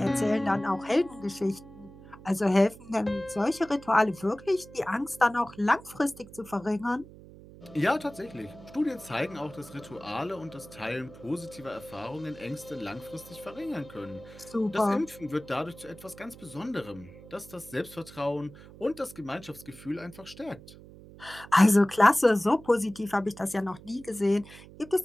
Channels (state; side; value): noise; right; hum, 19 dB below the sound